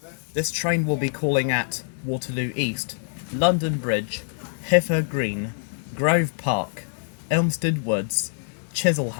This train will be calling at Waterloo East, London Bridge, Hither Green, Grove Park, Elmstead Woods,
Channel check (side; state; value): right; silent; digital silence